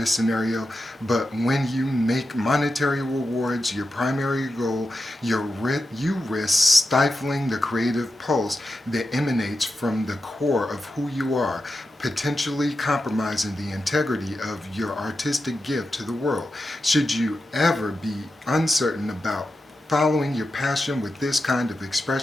scenario, but when you make monetary rewards your primary goal, you risk stifling the creative pulse that emanates from the core of who you are, potentially compromising the integrity of your artistic gift to the world. Should you ever be uncertain about following your passion with this kind of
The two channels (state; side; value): normal; both; correlation 0.89